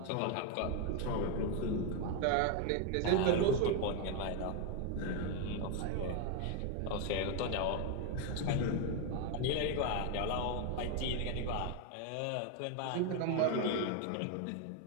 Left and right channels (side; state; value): both; different; correlation 0.01